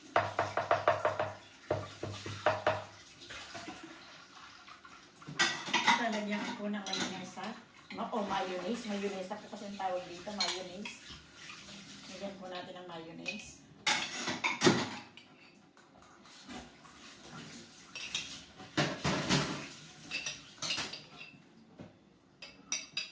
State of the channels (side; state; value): both; identical; correlation 1.00